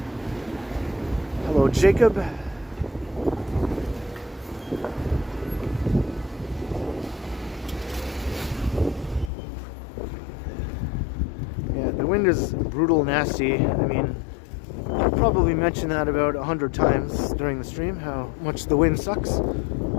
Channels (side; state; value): right; drops out; at 9.3 s